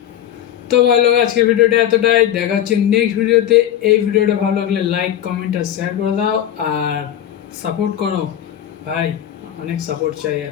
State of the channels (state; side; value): quieter; right; 10.9 dB